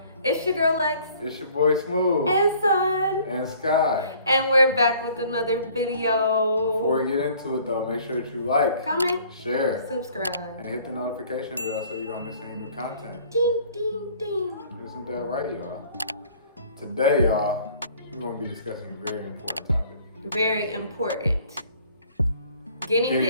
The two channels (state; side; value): inverted; both; correlation -0.55